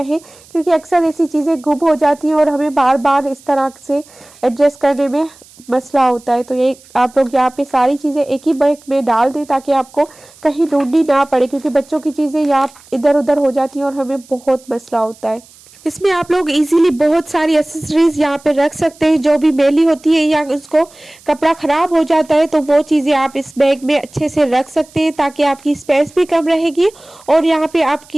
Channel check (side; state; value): right; noise; hiss, 25 dB below the sound